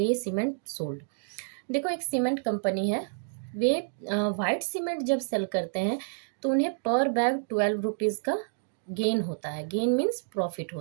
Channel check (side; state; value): left; silent; digital silence